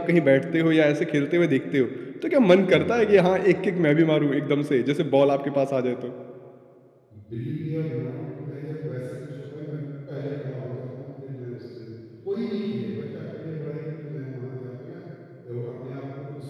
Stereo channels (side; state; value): both; identical; correlation 1.00